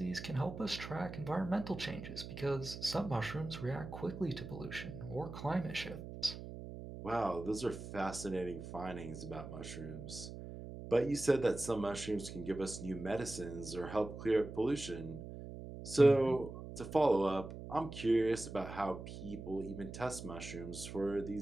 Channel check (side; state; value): right; noise; hum, 10 dB below the sound